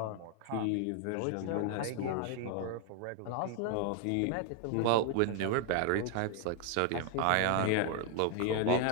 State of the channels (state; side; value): different; both; correlation 0.00